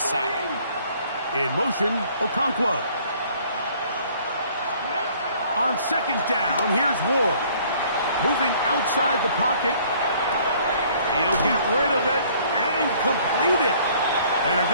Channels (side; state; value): both; inverted; correlation -0.57